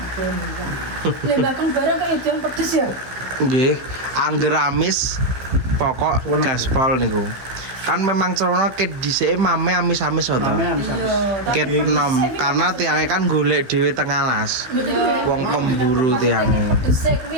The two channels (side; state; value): left; late; 15 ms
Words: Bakang barang kayak itu yang pedes ya. Nggih, angger amis pokok gaspol niku. Kan memang cerono ket dhisike mame amis-amis to. Ket nom karena tiange kan golek dhewe teng alas. Wong pemburu tiange. Pedese